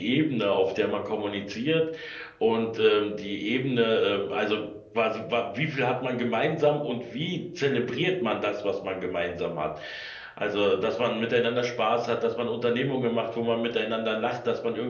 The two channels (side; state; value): both; identical; correlation 1.00